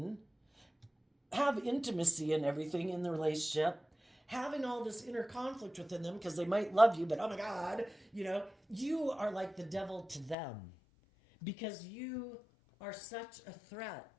have intimacy and everything in the relationship, having all this inner conflict within them because they might love you, but oh my God, you are like the devil to them because you are such a threat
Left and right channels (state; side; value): drops out; right; at 10.4 s